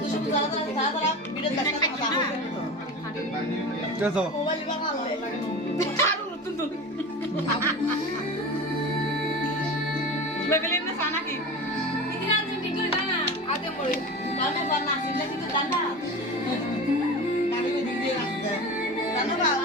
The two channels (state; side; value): normal; both; correlation 0.30